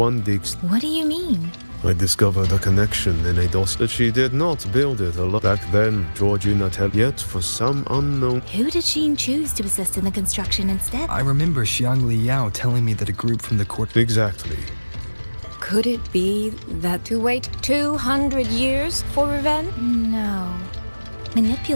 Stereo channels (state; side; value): inverted; both; correlation -1.00